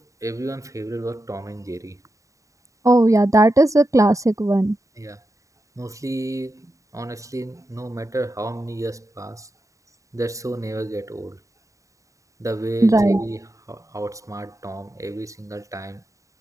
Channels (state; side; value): late; left; 0.16 ms